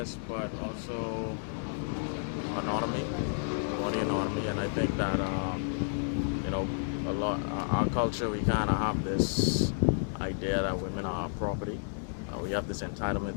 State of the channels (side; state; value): right; silent; 57 dB below the other